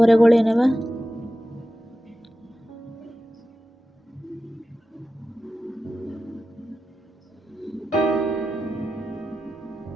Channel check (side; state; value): both; normal; correlation 0.92